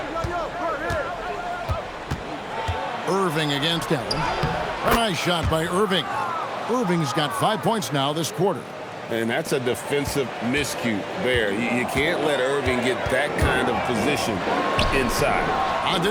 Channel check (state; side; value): identical; both; correlation 1.00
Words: Irving against Allen. A nice shot by Irving. Irving's got 5 points now this quarter. And that's a defensive miscue there. You can't let Irving get that kind of position inside.